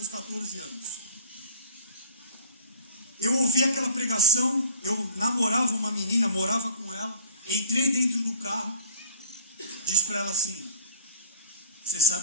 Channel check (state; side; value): inverted; both; correlation -0.42